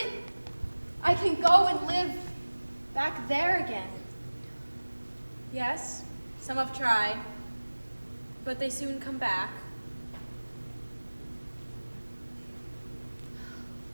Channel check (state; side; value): inverted; both; correlation -1.00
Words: I can go and live back there again. Yes, some have tried, but they soon come back.